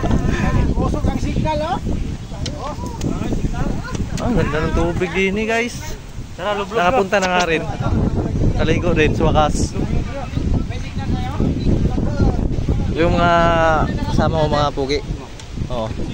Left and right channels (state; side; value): identical; both; correlation 1.00